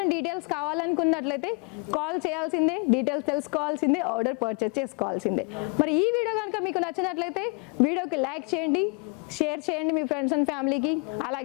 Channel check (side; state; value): right; quieter; 34.4 dB